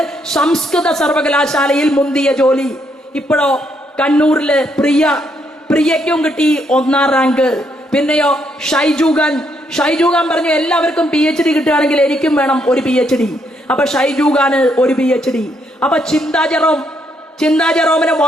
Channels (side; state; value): both; normal; correlation 0.74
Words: സംസ്കൃത സർവകലാശാലയിൽ മുന്തിയ ജോലി. ഇപ്പോഴോ കണ്ണൂരില് പ്രിയയ്ക്കും കിട്ടി 1ാം റാങ്ക്. പിന്നെയോ ഷൈജു ഖാൻ പറഞ്ഞു എല്ലാവർക്കും PhD കിട്ടുകയാണെങ്കിൽ എനിക്കും വേണം ഒരു PhD. അപ്പൊ ഷൈജു ഖാന് ഒരു PhD. അപ്പൊ ചിന്താ ജെറോമിന്